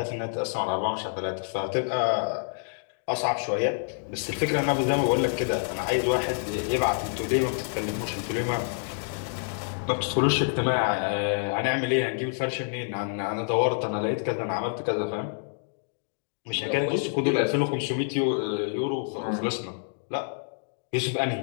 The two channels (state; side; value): silent; right; digital silence